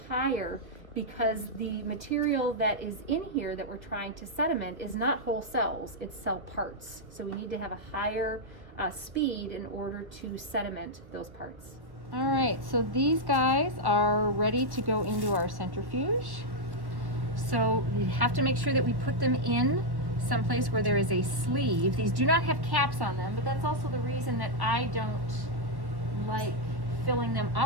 higher because the material that is in here that we're trying to sediment is not whole cells, it's cell parts. So we need to have a higher speed in order to sediment those parts. All right, so these guys are ready to go into our centrifuge. So we have to make sure that we put them in someplace where there is a sleeve. These do not have caps on them, but that's also the reason that I don't like filling them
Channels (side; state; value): left; late; 1.1 ms